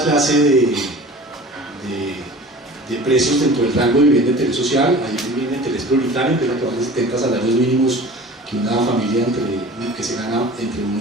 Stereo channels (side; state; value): both; normal; correlation 0.41